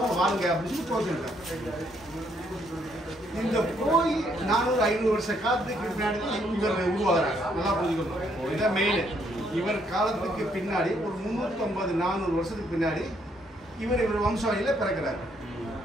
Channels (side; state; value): both; normal; correlation 0.71